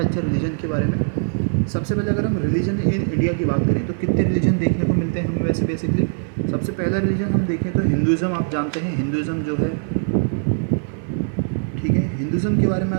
रिलीजन के बारे में। सबसे पहले अगर हम रिलीजन इन इंडिया की बात करें तो कितने रिलीजन देखने को मिलते हैं हमें वैसे बेसिकली। सबसे पहला रिलीजन हम देखें तो हिंदुज़म। आप जानते हैं हिंदुज़म जो है, ठीक है, हिंदुज़म के बारे में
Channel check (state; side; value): silent; left; digital silence